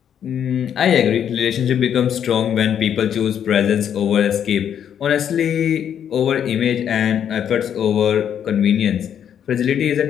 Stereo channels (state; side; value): quieter; right; 9.0 dB